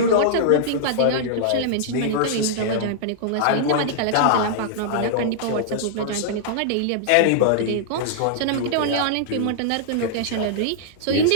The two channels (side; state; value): both; different; correlation -0.02